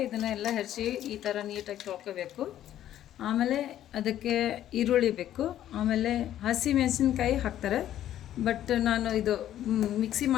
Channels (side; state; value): right; quieter; 11.9 dB